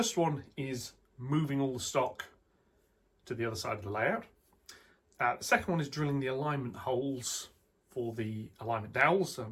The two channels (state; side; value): identical; both; correlation 1.00